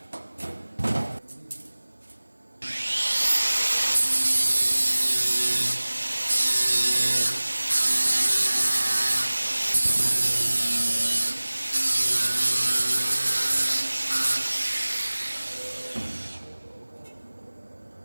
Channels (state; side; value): inverted; both; correlation -1.00